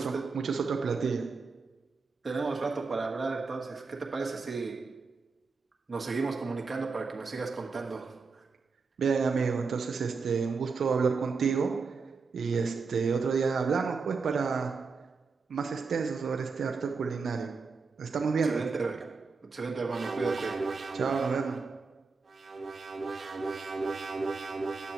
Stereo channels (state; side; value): quieter; left; 4.7 dB